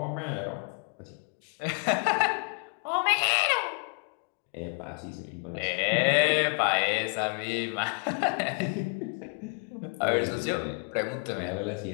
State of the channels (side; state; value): right; quieter; 35.1 dB